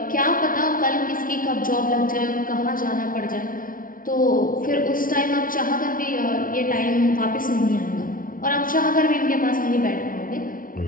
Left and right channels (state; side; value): late; right; 0.40 ms